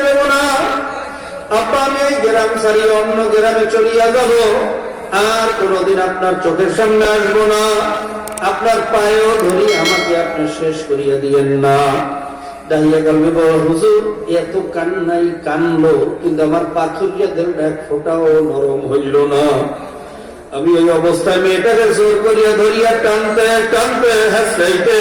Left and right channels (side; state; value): both; identical; correlation 1.00